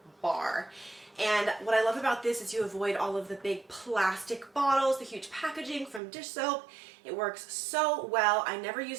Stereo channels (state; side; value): drops out; left; at 6.0 s